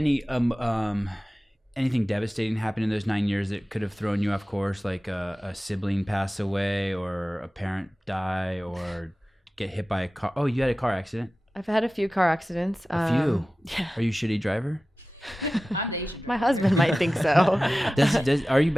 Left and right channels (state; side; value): normal; both; correlation 0.96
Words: anything devastating happen in those 9 years that could have thrown you off course, like a sibling pass away or a parent die or get hit by a car? Oh, you had a car accident? I've had a few car accidents. A few? Yeah. Are you a shitty driver? I'm the Asian. My husband might think so. Are you a